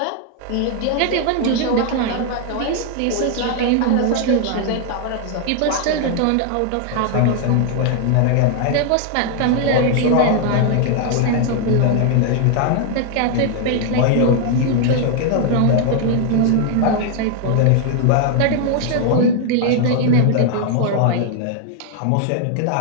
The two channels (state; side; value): different; both; correlation 0.00